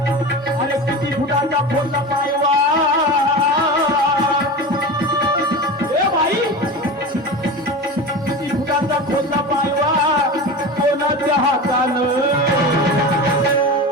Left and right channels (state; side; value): normal; both; correlation 0.28